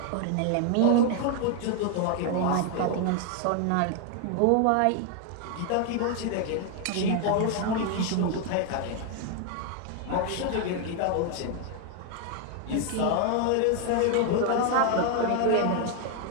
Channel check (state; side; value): different; both; correlation 0.00